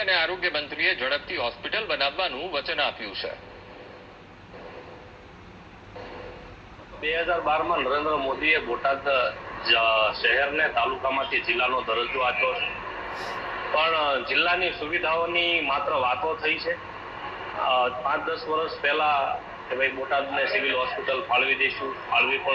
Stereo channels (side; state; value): both; identical; correlation 1.00